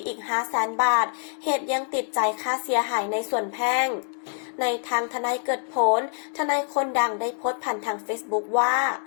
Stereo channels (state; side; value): silent; right; 61 dB below the other